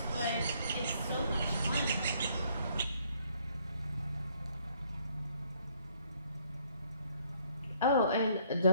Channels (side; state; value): both; inverted; correlation -0.65